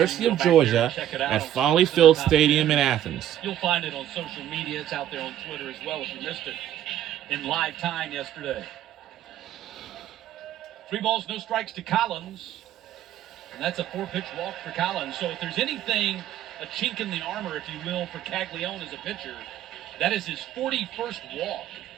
of Georgia at Foley Field Stadium in Athens. You'll find it on social media. It's out there on Twitter as well if you missed it in live time yesterday. 3 balls, no strikes to Collins. And that's a 4-pitch walk for Collins. So if there's anything, a chink in the armor, if you will, for Caglione as a pitcher, that is his 41st walk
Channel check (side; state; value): left; quieter; 11.6 dB